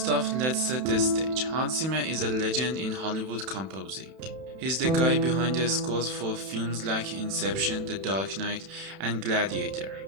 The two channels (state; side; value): late; left; 31 ms